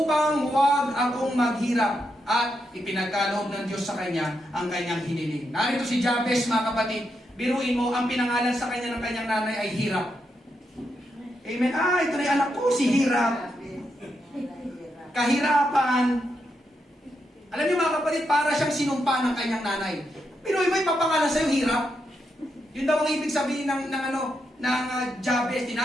huwag akong maghirap. At ipinagkaloob ng Diyos sa kanya ang kanyang hiniling. Narito si Jabez, mga kapatid. Biruin mo, ang pinangalan sa kanya ng kanyang nanay ay Hirap. Amen. Ito na yung anak ko, si Hirap. Kahirapan. Alam niyo mga kapatid, para siyang sinumpa ng kanyang nanay. Biruin mo, ipapangalan sa'yo, Hirap. Yun daw ang ibig sabihin ng Jabez.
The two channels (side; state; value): both; normal; correlation 0.83